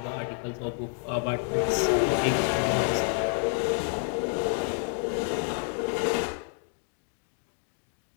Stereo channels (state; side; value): silent; right; 59 dB below the other